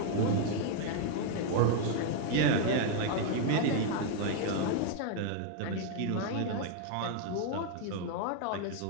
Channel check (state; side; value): different; both; correlation 0.00